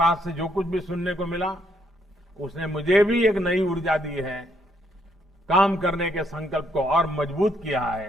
से जो कुछ भी सुनने को मिला, उसने मुझे भी एक नई ऊर्जा दी है, काम करने के संकल्प को और मजबूत किया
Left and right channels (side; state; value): both; normal; correlation 0.73